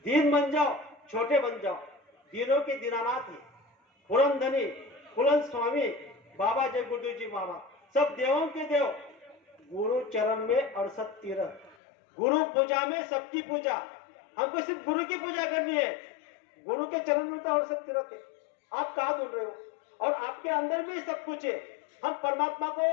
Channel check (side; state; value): right; drops out; at 11.8 s